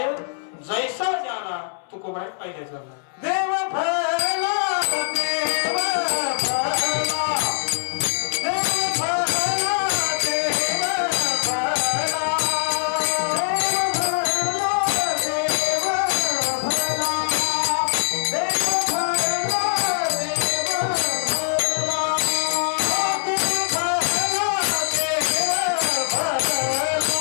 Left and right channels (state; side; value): silent; right; 64 dB below the other